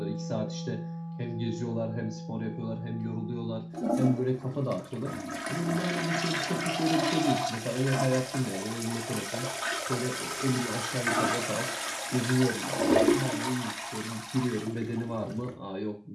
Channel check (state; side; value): identical; both; correlation 1.00